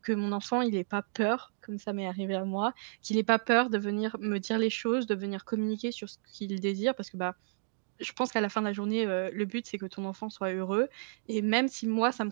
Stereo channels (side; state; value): left; silent; digital silence